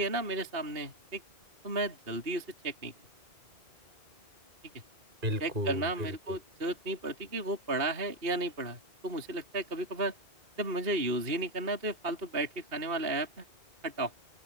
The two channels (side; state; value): left; late; 2.7 ms